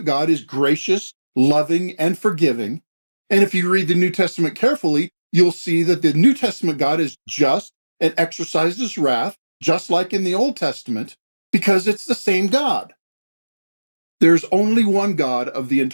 God is gracious, loving, and forgiving. And if you read the New Testament carefully, you'll see that the New Testament God is just and exercises wrath, just like in the Old Testament, because it's the same God. There's only one God of the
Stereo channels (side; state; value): both; inverted; correlation -1.00